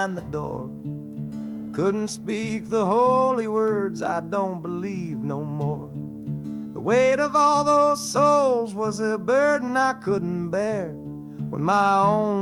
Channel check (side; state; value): both; identical; correlation 1.00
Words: the door. Couldn't speak the holy words, I don't believe no more. The weight of all those souls was a burden I couldn't bear, when my